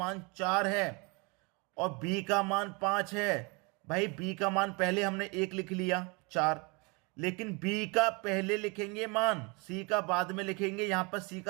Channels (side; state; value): left; quieter; 29.5 dB